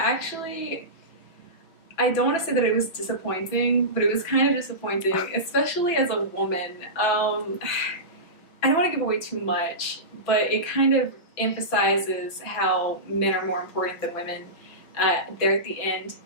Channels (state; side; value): late; right; 5.9 ms